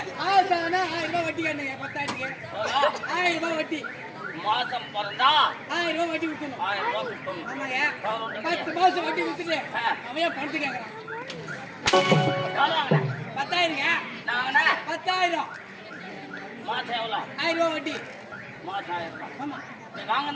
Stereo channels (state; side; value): identical; both; correlation 1.00